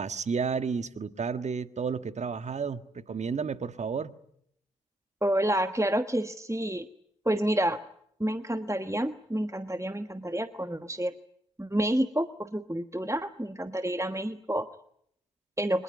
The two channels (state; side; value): normal; both; correlation 0.77